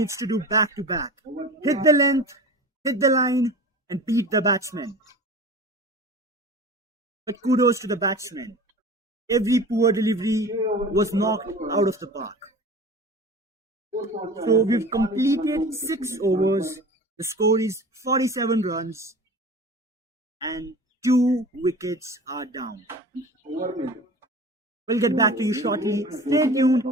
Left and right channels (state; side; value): normal; both; correlation 0.37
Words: to do back to back. Hit the length, hit the line, and beat the batsman. But kudos to the batsman. Every poor delivery was knocked out of the park. So we've completed 6 overs. The score is 47 runs and 2 wickets are down. We'll get back to you shortly. Stay tuned.